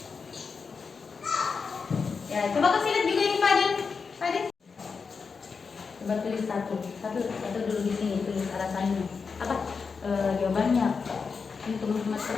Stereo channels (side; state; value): right; quieter; 5.2 dB